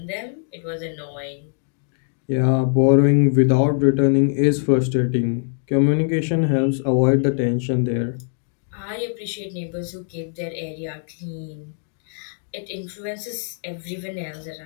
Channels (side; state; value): right; silent; digital silence